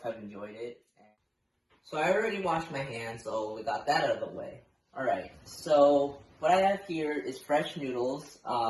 have enjoyed it. So I already washed my hands, so we got that out of the way. Alright, so what I have here is fresh noodles.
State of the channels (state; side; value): identical; both; correlation 1.00